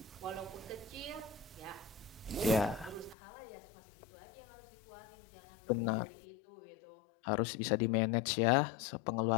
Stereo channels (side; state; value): right; drops out; at 3.2 s